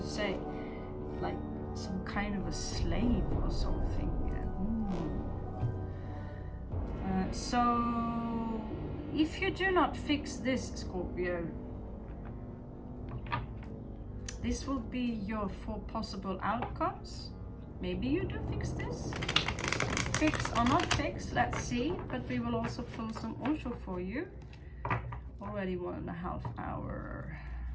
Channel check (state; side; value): identical; both; correlation 1.00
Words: say. Like some kind of a slave or something. So, if you do not fix this, Scorpio, this will be your 4 possible outcomes. Maybe you do fix this. Fix or not fix, let's see. But we will also pull some Osho for you. Already 1.5 hours.